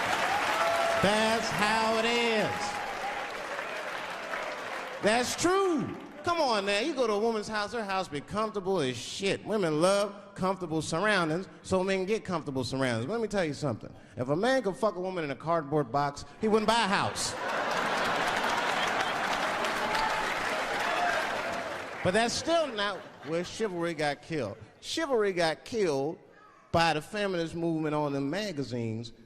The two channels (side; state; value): both; identical; correlation 1.00